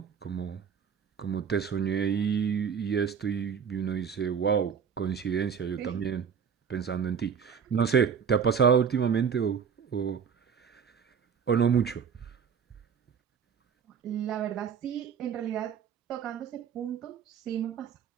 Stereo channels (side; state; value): left; quieter; 7.1 dB